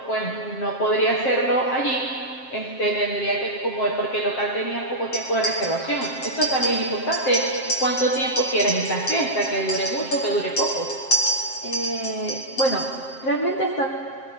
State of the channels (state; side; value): late; right; 7.6 ms